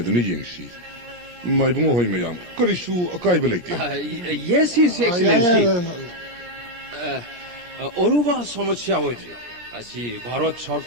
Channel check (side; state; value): left; late; 17 ms